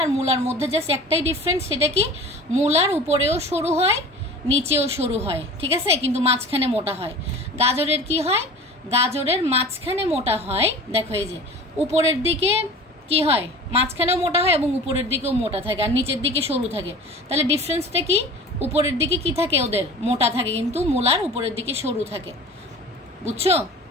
আর মূলার মধ্যে জাস্ট একটাই ডিফারেন্স, সেটা কি, মূলার উপরেও সরু হয়, নিচেও সরু হয়, ঠিক আছে, কিন্তু মাঝখানে মোটা হয়। গাজরের কি হয়, গাজরের মাঝখানে মোটা হয়, দেখো এই যে উপরের দিকে কি হয়, মাঝখানেও মোটা হয় এবং উপরের দিকেও মোটা থাকে, আর নিচের দিকে সরু থাকে। তাহলে ডিফারেন্সটা কি, উপরের দিকে কি থাকে, ওদের মোটা থাকে, কিন্তু মূলার উপরের দিকে সরু থাকে। বুঝছো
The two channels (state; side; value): normal; both; correlation 0.39